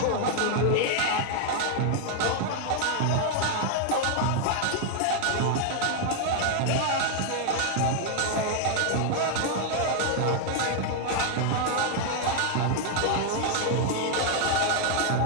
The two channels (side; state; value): both; different; correlation 0.00